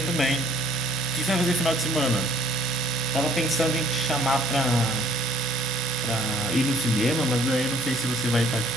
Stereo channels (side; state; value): both; normal; correlation 0.59